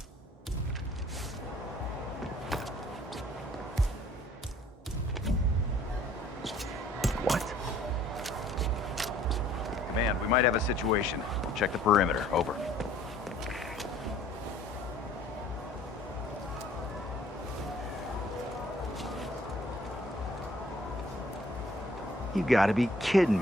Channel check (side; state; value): both; normal; correlation 0.57